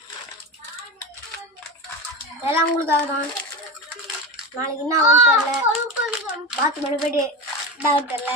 எல்லாம் உங்களுக்காக தான். நாளைக்கு என்ன ஆகும் தெரியல, பாத்ரூம் போயிட்டு என்ன தெரியல.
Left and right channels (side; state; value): both; normal; correlation 0.23